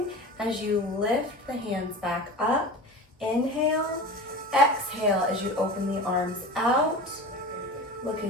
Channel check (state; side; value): normal; both; correlation 0.33